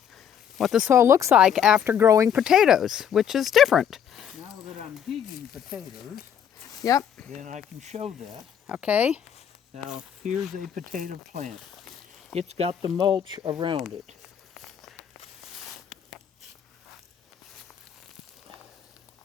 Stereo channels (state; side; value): quieter; right; 8.6 dB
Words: the soil looks like after growing potatoes, which is different. Now that I'm digging potatoes, yep, then I can show that. Okay. Now, here's a potato plant. It's got the mulch around it.